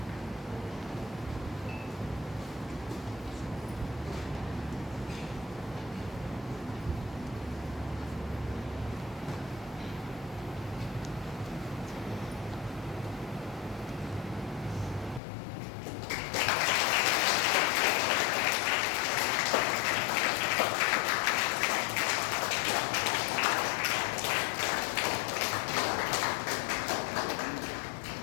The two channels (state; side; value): drops out; right; at 15.2 s